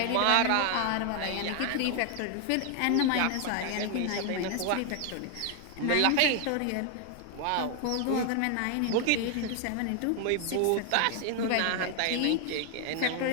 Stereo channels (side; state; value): both; different; correlation 0.00